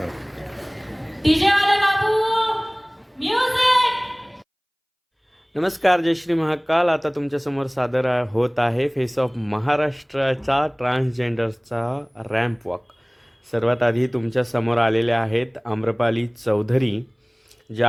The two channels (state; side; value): identical; both; correlation 1.00